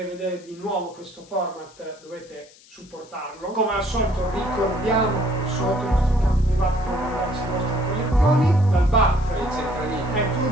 vedere di nuovo questo format dovete supportarlo. Come al solito ricordiamo che sotto i nostri campi privati dove mandarci le vostre collezioni. Dal bar Il centralino. è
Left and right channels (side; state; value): left; noise; hiss, 25 dB below the sound